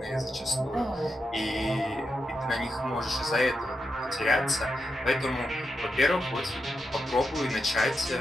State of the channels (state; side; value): normal; both; correlation 0.86